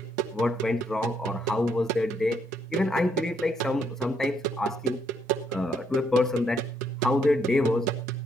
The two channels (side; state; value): both; normal; correlation 0.72